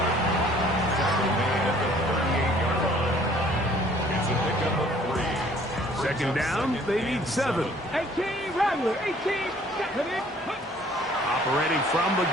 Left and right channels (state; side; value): normal; both; correlation 0.57